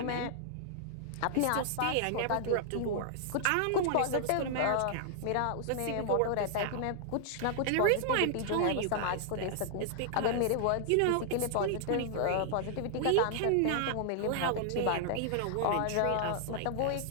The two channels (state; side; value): different; both; correlation -0.01